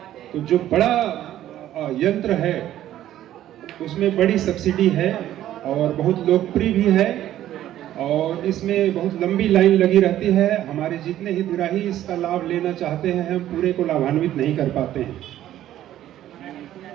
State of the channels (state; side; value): quieter; left; 12.6 dB